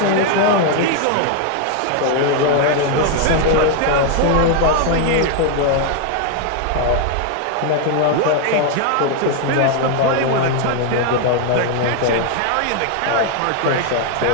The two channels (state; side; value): different; both; correlation 0.00